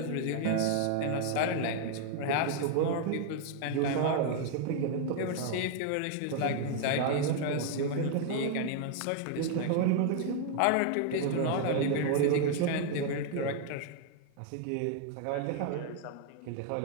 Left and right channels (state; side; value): different; both; correlation 0.00